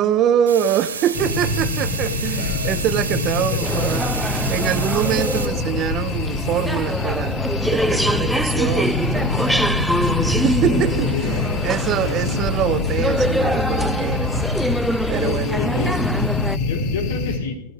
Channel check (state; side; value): normal; both; correlation 0.34